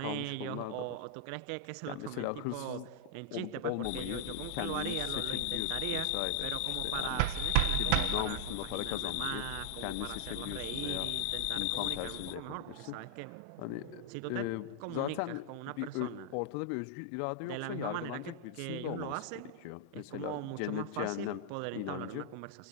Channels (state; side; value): different; both; correlation -0.01